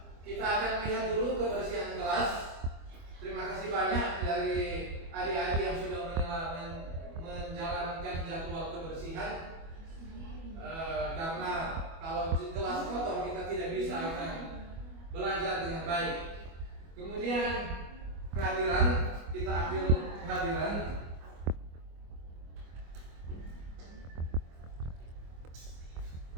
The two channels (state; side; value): late; left; 25 ms